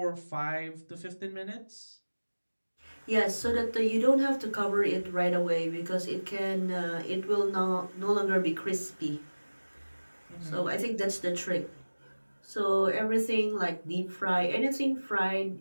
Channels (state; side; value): inverted; both; correlation -1.00